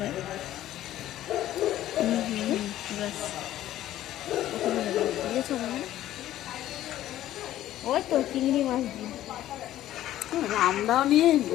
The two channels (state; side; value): quieter; right; 13.4 dB